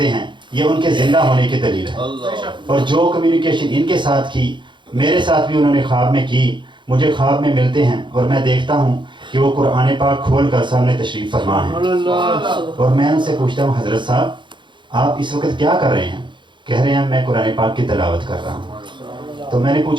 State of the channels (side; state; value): left; late; 0.23 ms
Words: हैं, ये उनके ज़िंदा होने की दलील है। और जो कम्युनिकेशन इनके साथ की, मेरे साथ भी उन्होंने ख्वाब में की, मुझे ख्वाब में मिलते हैं और मैं देखता हूँ कि वो कुरान पाक खोल कर सामने तशरीफ़ फरमा है। और मैं उनसे पूछता हूँ, हज़रत साहब आप इस वक्त क्या कर रहे हैं? कह रहे हैं मैं कुरान पाक की तिलावत कर रहा हूँ। तो मैंने